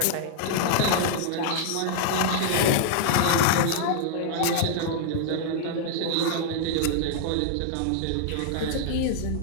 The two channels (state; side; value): different; both; correlation -0.01